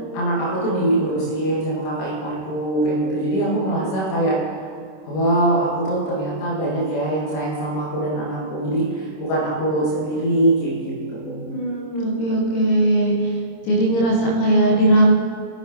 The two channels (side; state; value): right; late; 26 ms